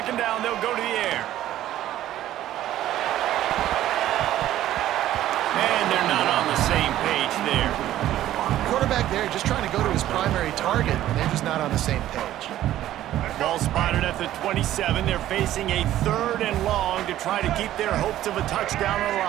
down, they'll go to the air. And they're not on the same page there. Quarterback there just trying to go to his primary target, and they're just not on the same page. Ball spotted at the 27. They're facing a 3rd and long to try to keep their hopes of a touchdown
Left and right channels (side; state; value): left; quieter; 13.2 dB